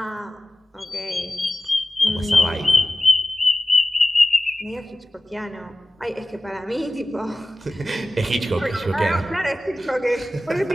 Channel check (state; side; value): normal; both; correlation 0.95